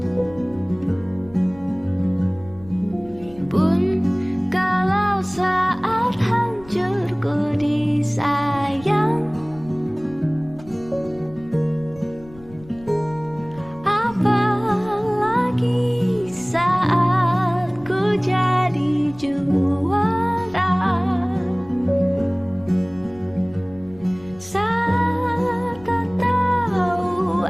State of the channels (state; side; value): noise; left; rumble, 21 dB below the sound